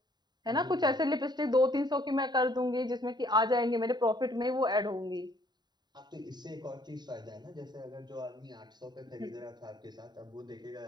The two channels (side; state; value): left; late; 0.20 ms